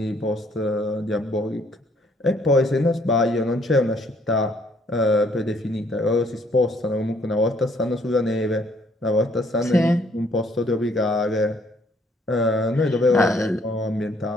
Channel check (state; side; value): normal; both; correlation 0.65